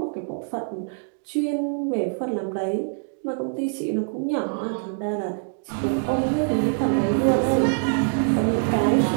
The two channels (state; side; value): silent; left; digital silence